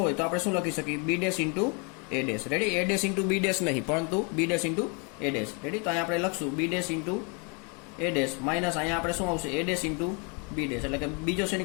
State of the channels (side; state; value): right; quieter; 34.2 dB